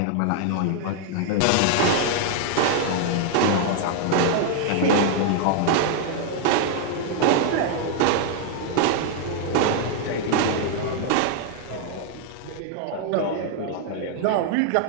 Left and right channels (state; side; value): different; both; correlation -0.01